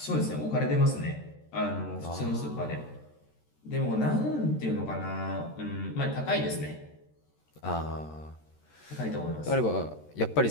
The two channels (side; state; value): right; late; 13 ms